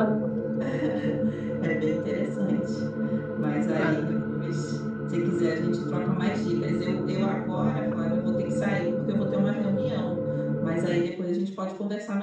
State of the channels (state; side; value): identical; both; correlation 1.00